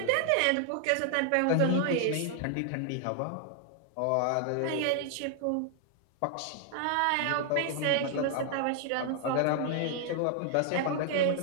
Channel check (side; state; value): both; different; correlation 0.00